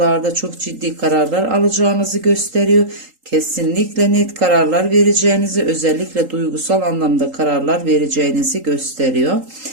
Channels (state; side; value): late; left; 3.8 ms